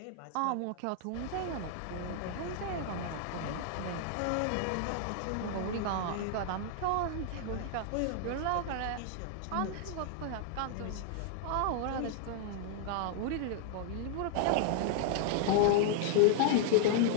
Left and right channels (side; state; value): both; different; correlation 0.00